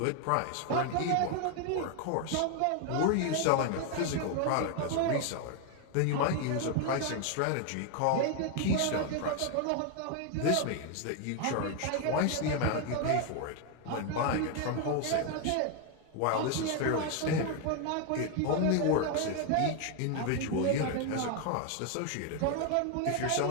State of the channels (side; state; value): both; different; correlation 0.01